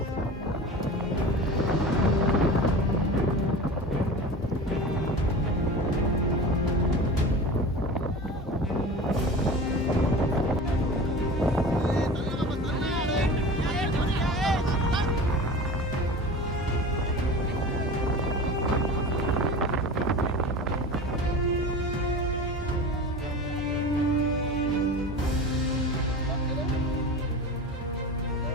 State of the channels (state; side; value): normal; both; correlation 0.34